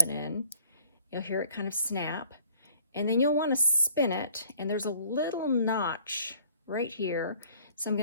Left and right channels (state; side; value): inverted; both; correlation -0.57